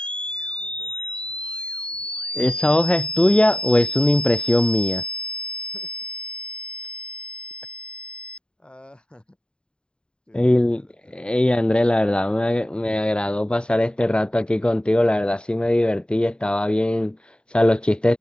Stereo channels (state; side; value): late; right; 0.050 ms